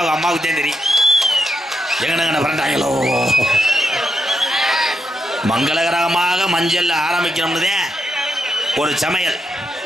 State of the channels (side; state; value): both; normal; correlation 0.82